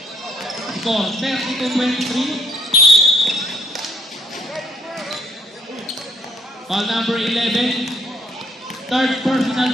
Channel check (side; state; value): both; normal; correlation 0.66